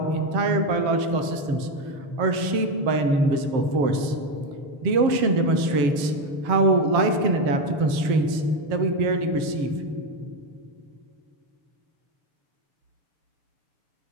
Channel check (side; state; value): left; late; 6.8 ms